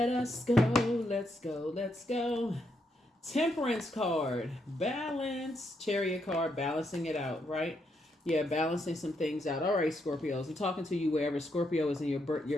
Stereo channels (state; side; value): normal; both; correlation 0.79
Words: us go. Let's go. Let's go. Temperance card, balance, chariot card, balancing it out, right? Yeah, balancing some things out. All right, Scorpios, I'm talking to you wherever Scorpio is in your